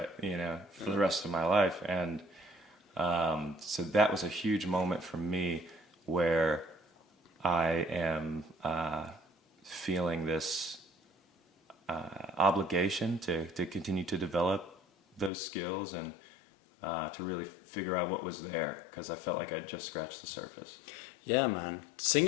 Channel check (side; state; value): right; drops out; at 15.3 s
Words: you know, for the rest of my life. And so that was a huge moment for me where I am feeling this obligation to continue to develop those skills and to really figure out what was there, because I felt like I'd just scratched the surface. Yeah, man.